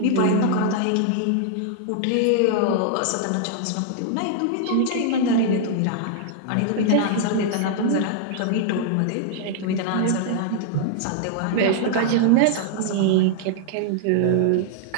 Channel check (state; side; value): different; both; correlation -0.01